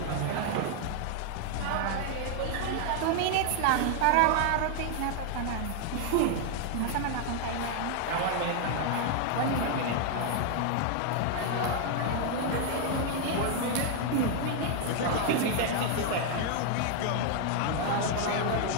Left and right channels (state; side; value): different; both; correlation 0.00